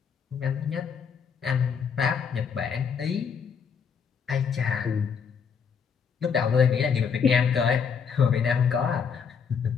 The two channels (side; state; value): right; quieter; 6.5 dB